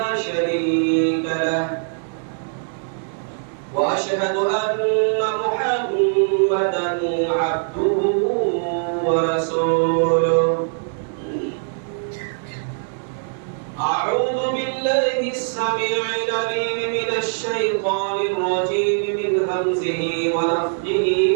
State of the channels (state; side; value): silent; left; digital silence